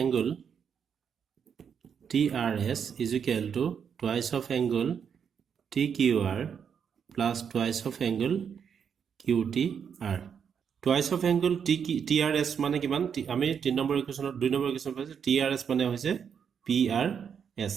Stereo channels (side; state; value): left; quieter; 7.3 dB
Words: angle TRS = twice of angle TQR plus twice of angle QTR twice of angle TRS মানে কিমান আমি 3 নম্বৰ ইকুৱেশ্যনৰ 2 নম্বৰ ইকুৱেশ্যন পাইছো TRS মানে হৈছে PRS